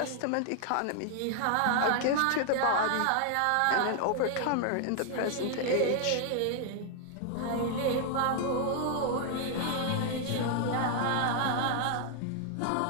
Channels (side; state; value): both; different; correlation 0.00